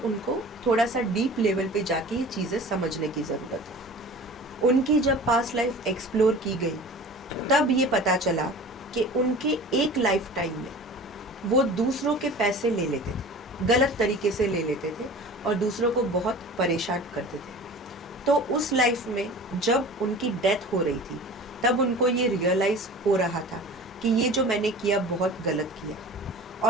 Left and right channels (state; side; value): normal; both; correlation 0.40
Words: थोड़ा सा डीप लेवल पे जाके ये चीज़ें समझने की ज़रूरत है। उनकी जब पास्ट लाइफ एक्सप्लोर की गई तब ये पता चला कि उनके एक लाइफ टाइम में वो दूसरों के पैसे ले लेते थे, गलत तरीके से ले लेते थे और दूसरों को बहुत परेशान करते थे। तो उस लाइफ में जब उनकी डेथ हो रही थी तब उनको ये रियलाइज़ हो रहा था कि ये जो मैंने किया बहुत गलत किया,